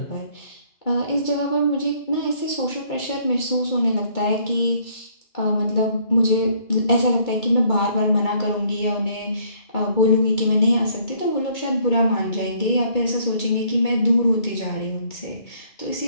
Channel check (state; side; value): late; right; 2.2 ms